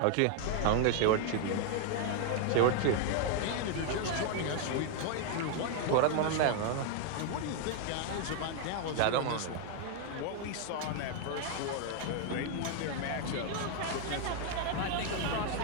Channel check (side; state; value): both; different; correlation 0.00